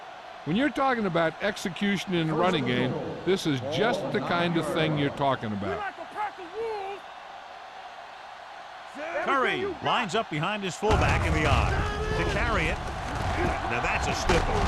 When you're talking about execution in the running game, this is just the kind of thing you're talking about. Curry lines up behind his fullback in the odd to carry it. Now that's a stiff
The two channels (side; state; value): both; identical; correlation 1.00